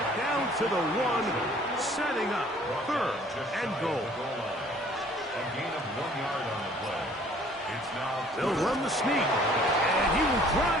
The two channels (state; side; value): normal; both; correlation 0.55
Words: Down to the 1, setting up 3rd and goal. A gain of 1 yard on the play. It's now... They'll run the sneak. And he will